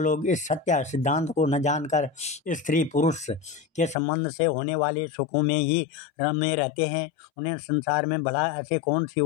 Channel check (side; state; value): right; drops out; at 4.0 s